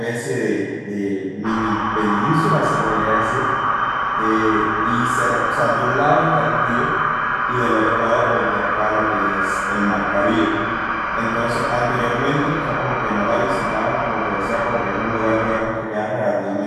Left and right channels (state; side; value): identical; both; correlation 1.00